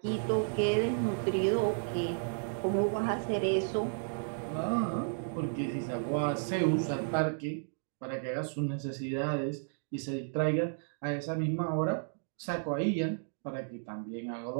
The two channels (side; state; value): left; silent; digital silence